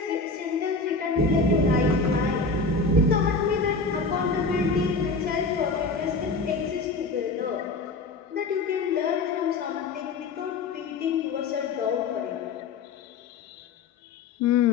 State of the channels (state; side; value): quieter; right; 4.0 dB